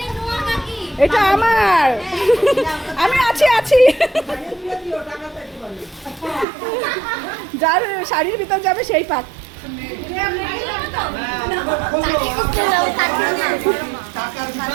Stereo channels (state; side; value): drops out; left; at 6.5 s